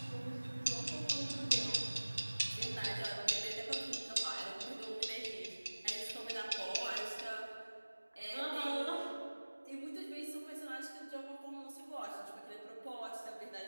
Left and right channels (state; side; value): inverted; both; correlation -1.00